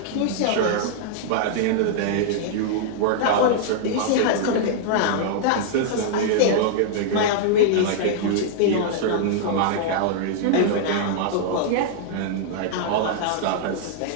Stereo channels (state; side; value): different; both; correlation -0.01